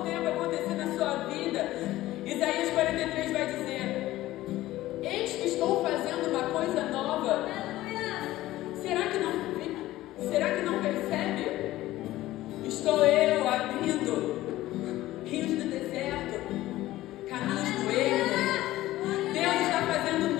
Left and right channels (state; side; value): quieter; right; 16.0 dB